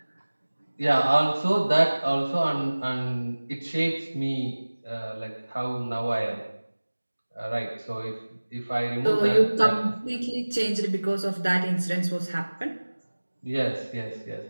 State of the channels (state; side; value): inverted; both; correlation -1.00